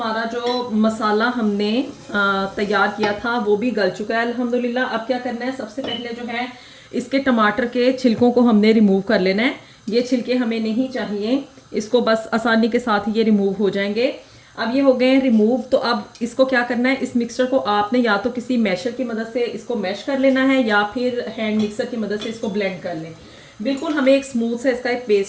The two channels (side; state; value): both; identical; correlation 1.00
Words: जो मसाला हमने तैयार किया था वो भी गल चुका है अल्हम्दुलिल्लाह। अब क्या करना है, सबसे पहले जो है इसके टमाटर के छिलकों को हमने रिमूव कर लेना है। ये छिलके हमें नहीं चाहिए, इसको बस आसानी के साथ ये रिमूव हो जाएंगे। अब ये हो गए हैं रिमूव। तो अब इसको क्या करना है, इस मिक्सचर को आपने या तो किसी मैशर की मदद से इसको मैश कर लेना है या फिर हैंड मिक्सर की मदद से इसको ब्लेंड कर लें। बिल्कुल हमें एक स्मूथ सा इसका एक